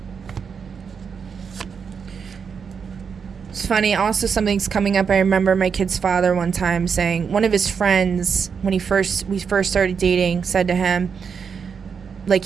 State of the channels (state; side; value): quieter; left; 6.3 dB